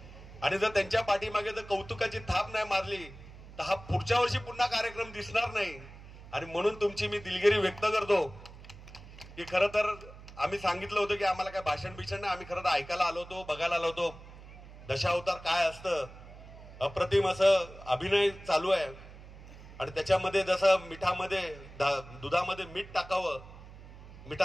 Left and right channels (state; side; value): noise; right; hum, 17 dB below the sound